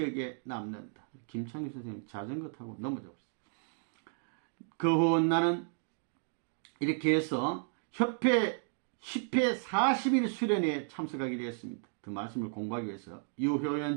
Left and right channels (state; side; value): silent; left; 55 dB below the other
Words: 남는다. 김창규 선생님 자전거 타고 넘어져 버렸어요. 그 후 나는 이렇게 해서 협회 10회 40일 수련회에 참석하게 되었습니다. 그 말씀을 공부하기 위해서